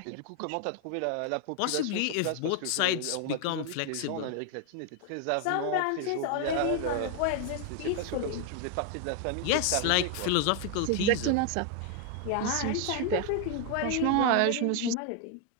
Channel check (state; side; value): different; both; correlation 0.01